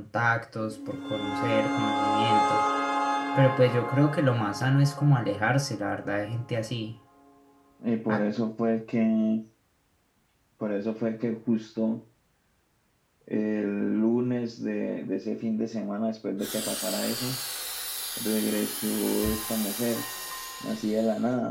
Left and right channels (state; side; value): identical; both; correlation 1.00